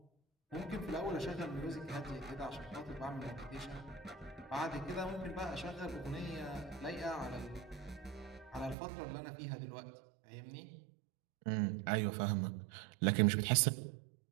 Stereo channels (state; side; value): drops out; left; at 8.8 s